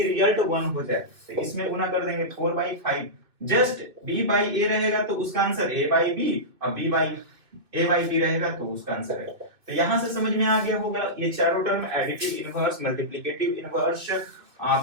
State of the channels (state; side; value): late; left; 2.7 ms